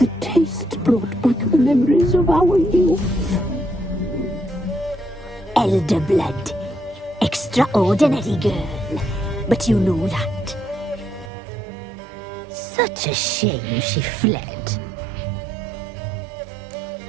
taste brought back the memories of our youth. Elder blood. Extraordinary girl. But you know that. Such a shame she fled.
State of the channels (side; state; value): left; drops out; at 11.3 s